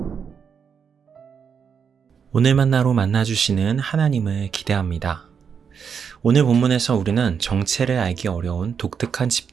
오늘 만나로 만나주시는 하나님을 기대합니다. 오늘 본문에서 우리는 정체를 알기 어려운 독특한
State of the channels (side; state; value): left; quieter; 6.8 dB